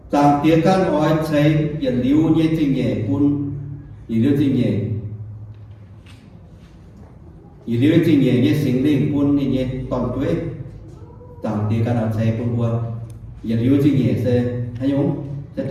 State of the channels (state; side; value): identical; both; correlation 1.00